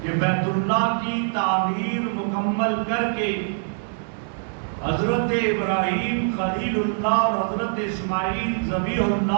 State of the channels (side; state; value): left; silent; 61 dB below the other